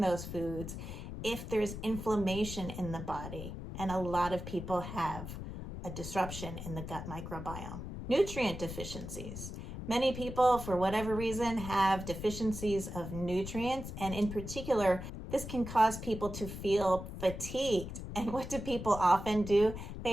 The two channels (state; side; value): noise; left; rumble, 8 dB below the sound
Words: those foods. if there's inflammation in the body, and a lot of people have a disruption in the gut microbiome. Nutrient deficiencies. Many people, for whatever reason, have deficiencies of nutrients, and in particular, this can cause people to feel fatigued. And what do people often do?